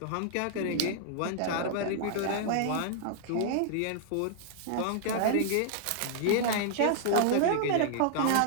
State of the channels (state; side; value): different; both; correlation -0.01